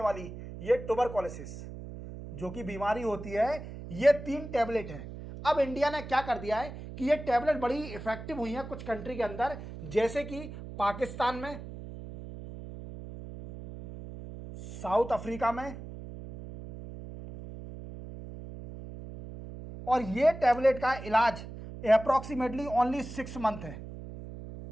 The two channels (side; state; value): right; noise; hum, 11 dB below the sound